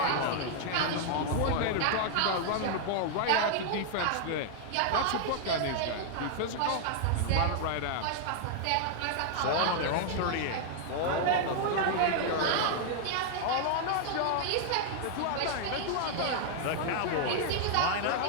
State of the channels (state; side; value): different; both; correlation -0.01